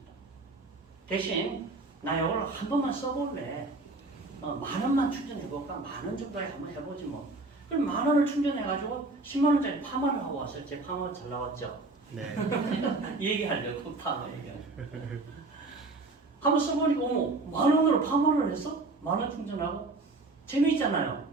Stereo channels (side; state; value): left; quieter; 3.3 dB